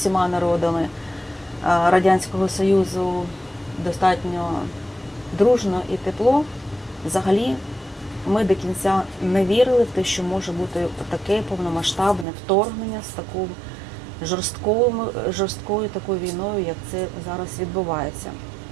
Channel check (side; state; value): left; drops out; at 12.2 s